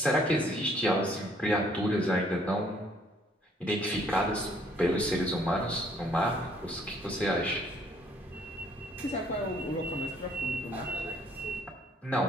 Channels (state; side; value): normal; both; correlation 0.63